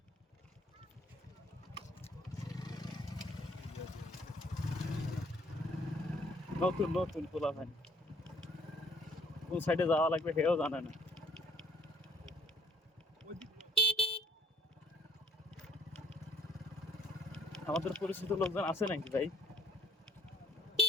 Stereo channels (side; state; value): both; normal; correlation 0.64